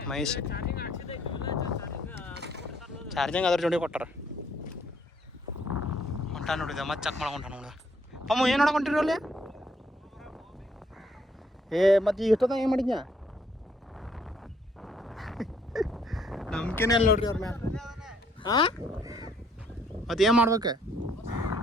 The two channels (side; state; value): both; normal; correlation 0.67